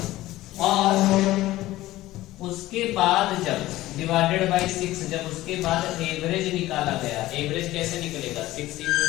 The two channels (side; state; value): right; quieter; 16.5 dB